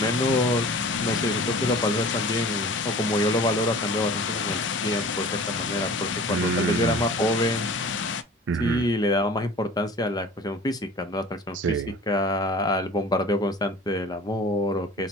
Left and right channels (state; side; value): normal; both; correlation 0.43